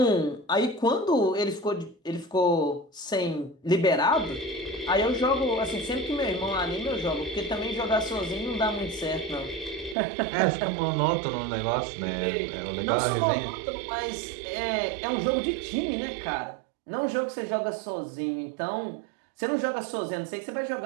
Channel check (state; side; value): drops out; left; at 10.0 s